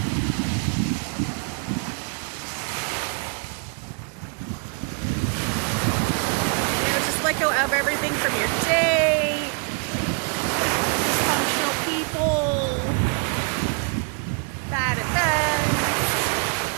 Just let go of everything from your day, dysfunctional people, bad events,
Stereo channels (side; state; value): left; quieter; 36.5 dB